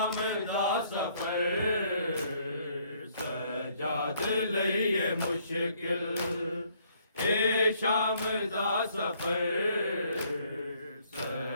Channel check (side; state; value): both; inverted; correlation -0.66